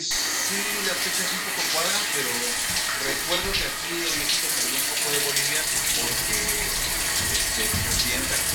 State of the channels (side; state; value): both; identical; correlation 1.00